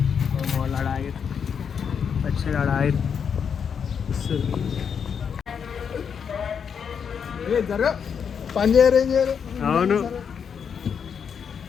వాళ్ళు ఆడ ఆగారు, వచ్చాడు ఆడ ఆగారు. పని చేయరు, ఏం చేయరు. అవును,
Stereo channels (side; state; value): right; quieter; 7.0 dB